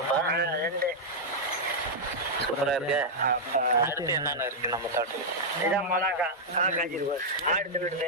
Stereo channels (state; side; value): normal; both; correlation -0.05